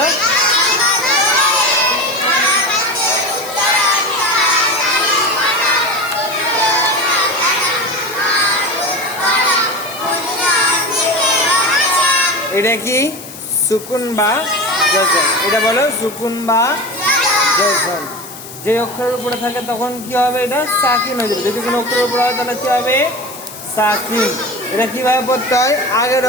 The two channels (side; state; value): left; noise; hiss, 14 dB below the sound